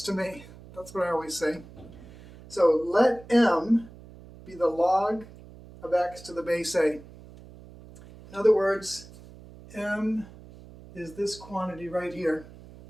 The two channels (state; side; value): noise; right; hum, 19 dB below the sound